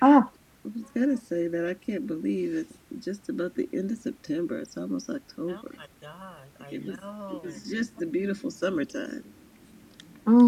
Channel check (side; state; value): both; identical; correlation 1.00